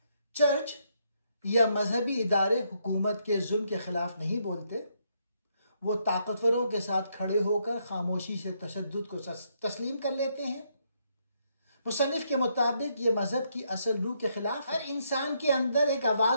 چرچ یا مذہبی ادارے حکومت کے ظلم کے خلاف نہیں بولتے، وہ طاقتوروں کے ساتھ کھڑے ہو کر خاموشی سے تشدد کو تسلیم کر لیتے ہیں۔ مصنف کے مطابق یہ مذہب کی اصل روح کے خلاف ہے۔ ہر انسان کے اندر ایک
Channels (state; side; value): inverted; both; correlation -0.75